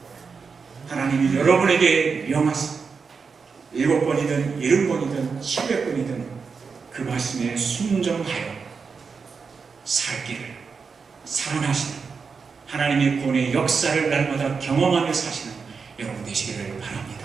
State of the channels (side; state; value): left; quieter; 5.3 dB